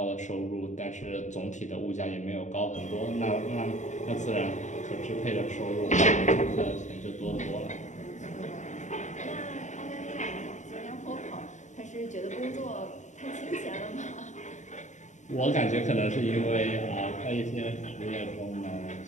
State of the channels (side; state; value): right; late; 0.35 ms